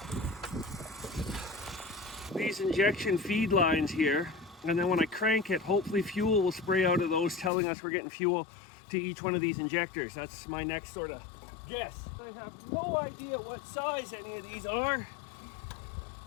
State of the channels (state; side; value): drops out; right; at 7.5 s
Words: these injection feed lines here, and then when I crank it, hopefully fuel will spray out of those, telling us we're getting fuel to each one of these injectors. That's my next sort of guess. I have no idea what size any of these are.